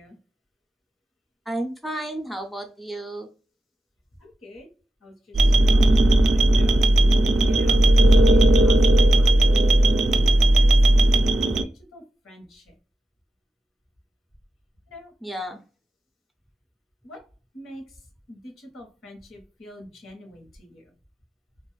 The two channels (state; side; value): normal; both; correlation 0.90